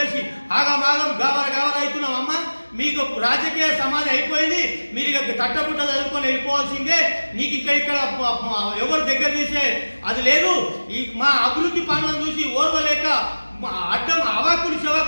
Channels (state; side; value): inverted; both; correlation -1.00